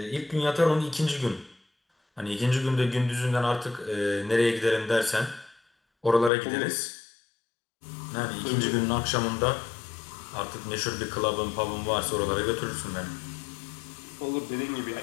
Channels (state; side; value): drops out; right; at 6.3 s